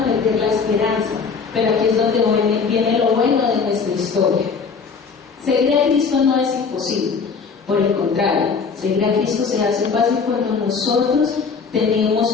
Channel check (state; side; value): quieter; right; 5.4 dB